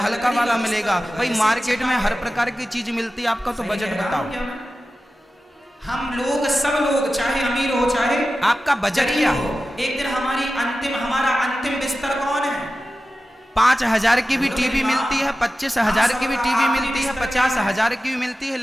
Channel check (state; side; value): normal; both; correlation 0.94